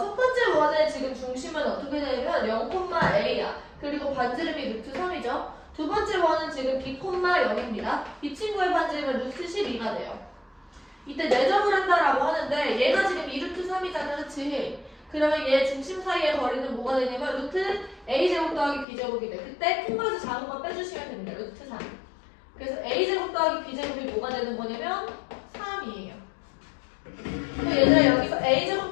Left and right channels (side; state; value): right; drops out; at 18.9 s